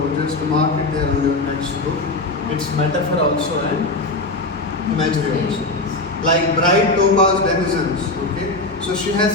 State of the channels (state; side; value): quieter; right; 3.0 dB